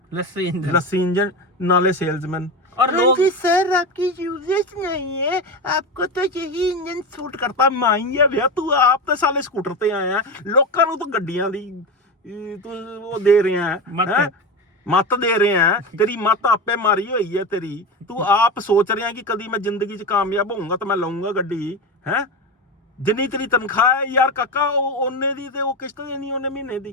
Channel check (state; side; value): normal; both; correlation 0.20